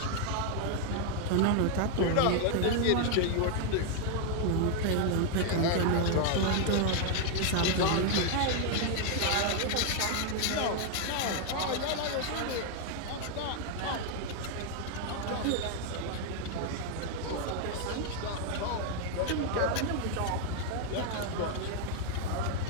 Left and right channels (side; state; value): both; different; correlation 0.00